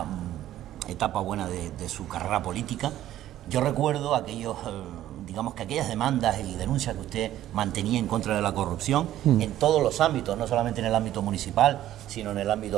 etapa buena de su carrera política. Yo recuerdo aquellas demandas y denuncias que usted mantenía en contra de la corrupción en todos los ámbitos, no solamente en el ámbito municipal, sino en el ámbito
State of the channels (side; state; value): left; quieter; 13.0 dB